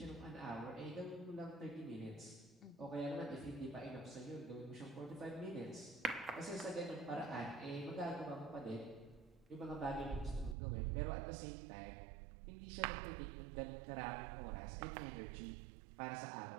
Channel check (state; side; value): drops out; left; at 10.6 s